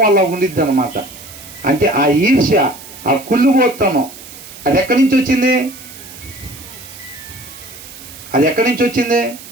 అలా ఉండిద్ది అనమాట. అంటే ఆ ఈర్ష్య, ఆ కుళ్ళుబోత్తనం అది ఎక్కడి నుంచి వచ్చింది? అది ఎక్కడి నుంచి వచ్చింది?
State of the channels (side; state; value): right; noise; hiss, 17 dB below the sound